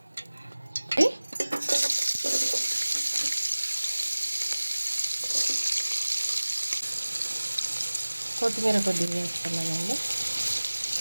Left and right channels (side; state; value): both; inverted; correlation -1.00